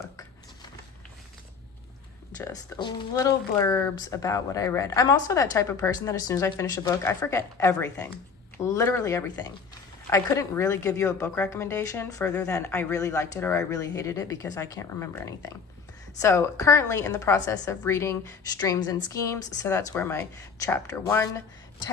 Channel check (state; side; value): quieter; right; 5.5 dB